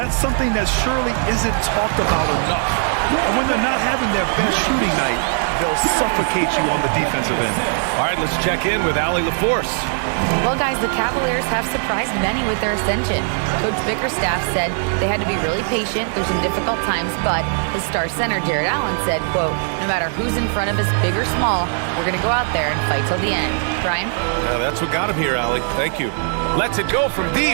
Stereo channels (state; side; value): silent; left; 66 dB below the other